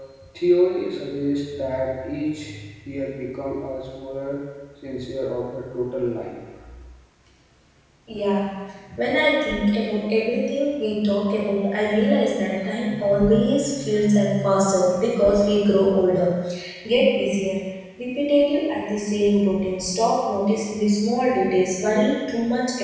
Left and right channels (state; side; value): identical; both; correlation 1.00